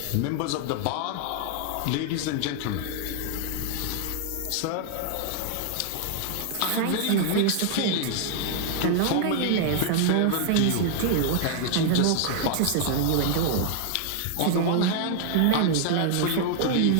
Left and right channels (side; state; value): both; different; correlation 0.00